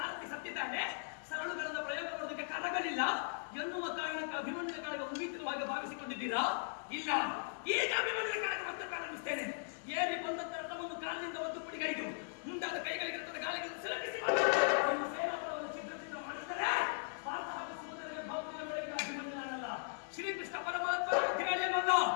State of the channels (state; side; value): silent; right; digital silence